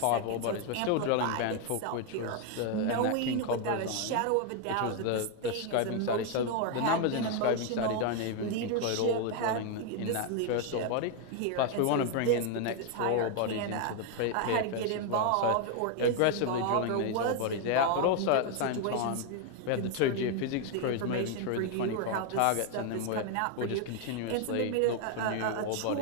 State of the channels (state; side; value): different; both; correlation 0.01